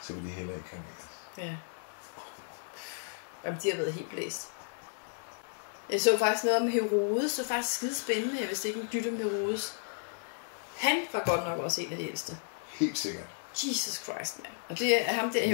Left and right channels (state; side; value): silent; right; digital silence